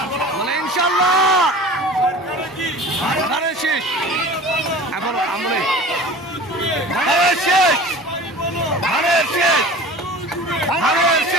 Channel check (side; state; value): both; normal; correlation 0.40